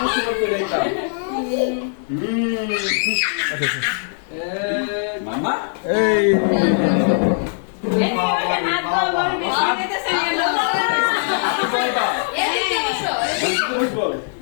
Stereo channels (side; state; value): right; silent; 62 dB below the other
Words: খুশি করতে যাইতাম মামা এই